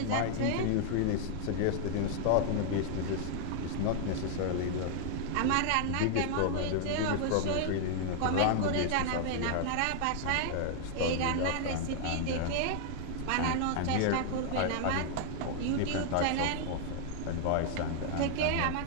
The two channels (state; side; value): different; both; correlation 0.00